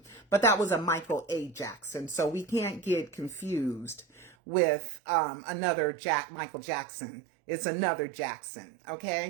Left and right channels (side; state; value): left; drops out; at 4.4 s